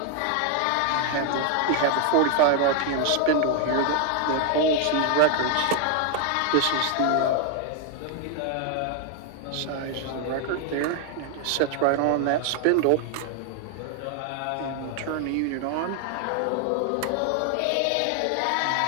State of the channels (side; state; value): both; different; correlation 0.00